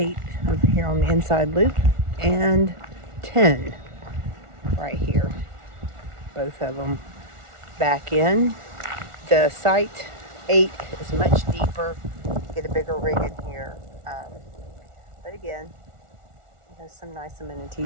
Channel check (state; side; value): late; left; 1.4 ms